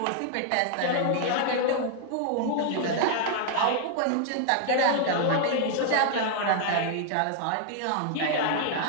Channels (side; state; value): both; different; correlation 0.00